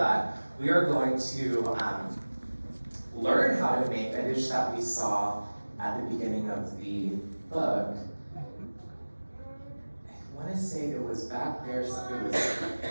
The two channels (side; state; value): both; inverted; correlation -1.00